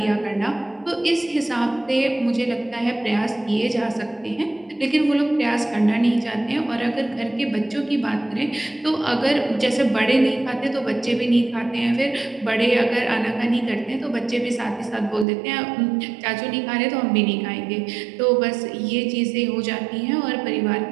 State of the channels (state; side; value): drops out; left; at 15.2 s